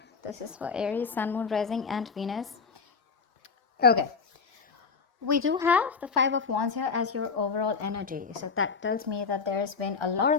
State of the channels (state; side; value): quieter; right; 5.2 dB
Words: This is for Aries, Sun, Moon, Rising, and Venus. Okay, we do have the Five of Wands here as your overall energy. So that tells me that there's been a lot